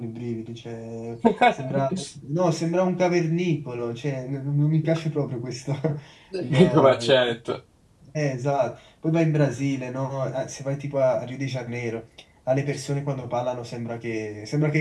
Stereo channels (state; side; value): identical; both; correlation 1.00